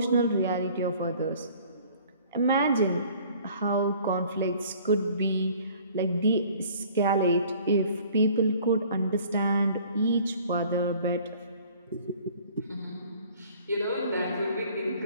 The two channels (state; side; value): inverted; both; correlation -0.53